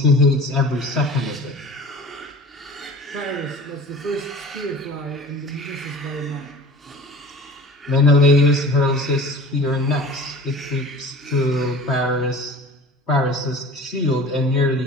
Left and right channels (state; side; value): normal; both; correlation 0.41